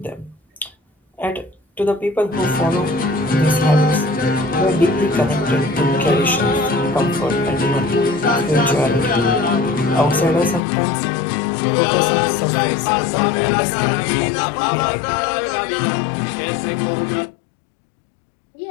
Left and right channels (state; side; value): drops out; right; at 10.6 s